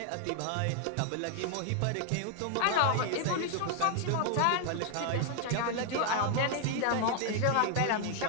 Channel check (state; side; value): different; both; correlation 0.00